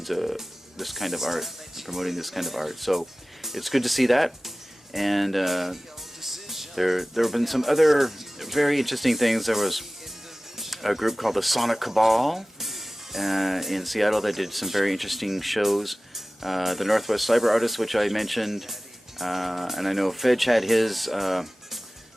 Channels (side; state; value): both; normal; correlation 0.98